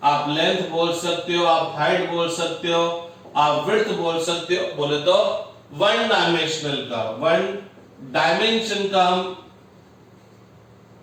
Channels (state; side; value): identical; both; correlation 1.00